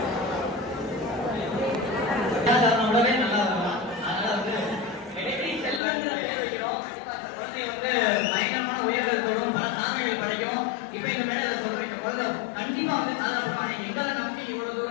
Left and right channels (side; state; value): right; drops out; at 5.8 s